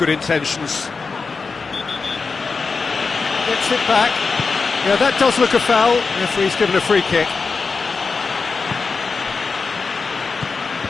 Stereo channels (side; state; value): right; quieter; 4.6 dB